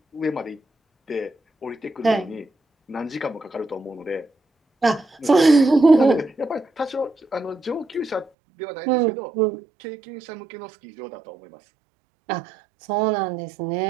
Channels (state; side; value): drops out; left; at 8.3 s